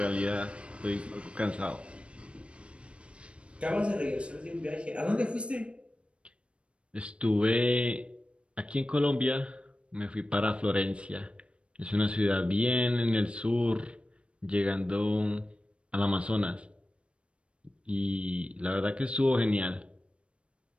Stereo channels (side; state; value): left; late; 0.059 ms